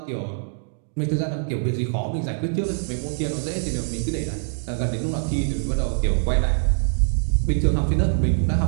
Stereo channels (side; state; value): left; silent; digital silence